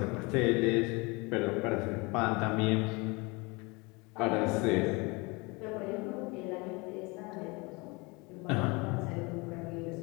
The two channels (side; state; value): right; quieter; 26.8 dB